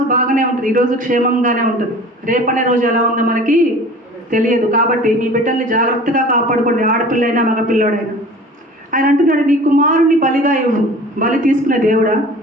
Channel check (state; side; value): normal; both; correlation 0.43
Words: బాగానే ఉంటుంది, ఈరోజు క్షేమంగానే ఉంటుంది. రేపనే రోజు ఎలా ఉందో మనకి తెలియదు. కాబట్టి మీ బిడ్డల్ని జాగ్రత్తగా కాపాడుకోండి, ఆడపిల్లైనా మగపిల్లోడైనా. ఆయన అంటున్నాడు నీ కుమారుని బలిగా ఇవ్వు. బలి తీసుకునే దేవుడా